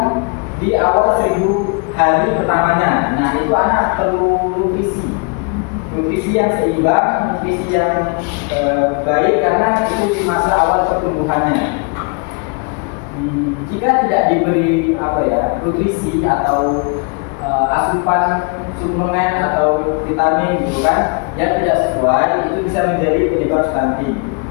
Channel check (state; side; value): quieter; right; 35.7 dB